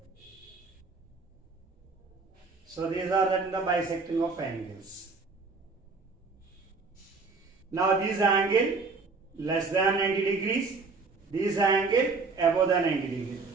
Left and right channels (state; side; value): quieter; left; 4.3 dB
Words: So these are the bisecting of angles. Now this angle less than 90 degrees, this angle above the 90 degrees.